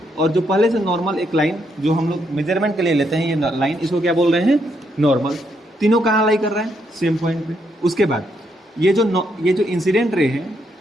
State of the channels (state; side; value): normal; both; correlation 0.76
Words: और जो पहले से नॉर्मल एक लाइन जो हम लोग मेजरमेंट के लिए लेते हैं ये लाइन, इसको क्या बोल रहे हैं, नॉर्मल। तीनों कहाँ लाई कर रहा है, सेम पॉइंट पे। उसके बाद ये जो इंसिडेंट रे है